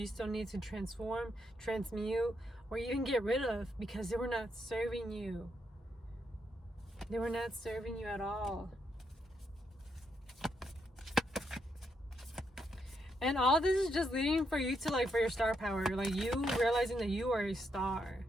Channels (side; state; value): both; normal; correlation 0.79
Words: still need to transform, transmute, or even get rid of because they were not serving you. They were not serving you at all. And all this is just leading for you to like, for your star power. Like you realizing that you are a star.